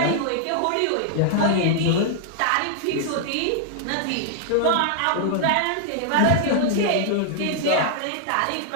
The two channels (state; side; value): different; both; correlation -0.01